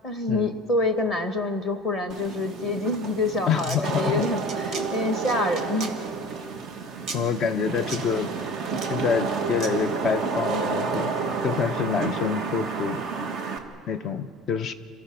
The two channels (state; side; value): normal; both; correlation 0.40